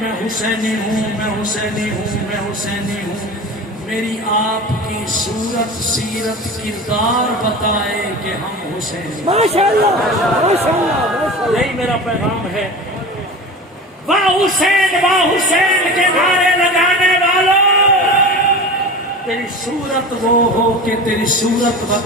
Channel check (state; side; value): normal; both; correlation 0.32